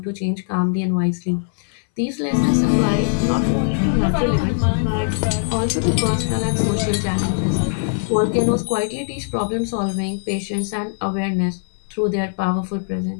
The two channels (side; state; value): right; silent; 63 dB below the other